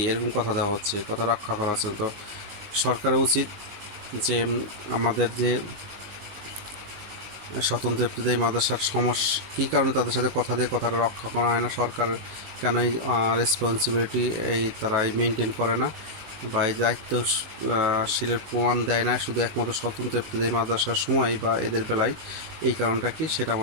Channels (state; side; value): late; left; 19 ms